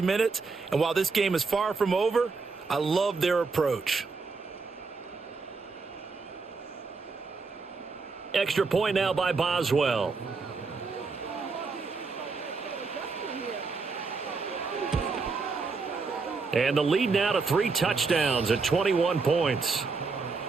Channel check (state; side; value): quieter; left; 4.4 dB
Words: minutes, and while this game is far from over, I love their approach. Extra point now by Boswell. And the lead now to 3 touchdowns at 21 points.